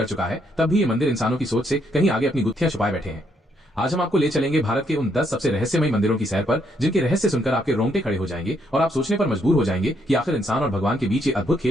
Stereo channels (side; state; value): both; normal; correlation 0.73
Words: चुका है, तब भी ये मंदिर इंसानों की सोच से कहीं आगे अपनी गुत्थियां छुपाए बैठे हैं। आज हम आपको ले चलेंगे भारत के उन 10 सबसे रहस्यमय मंदिरों की सैर पर, जिनके रहस्य सुनकर आपके रोंगटे खड़े हो जाएंगे और आप सोचने पर मजबूर हो जाएंगे कि आखिर इंसान और भगवान के बीच ये अद्भुत